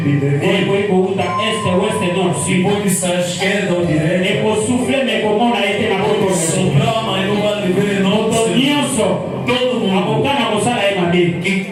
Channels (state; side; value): identical; both; correlation 1.00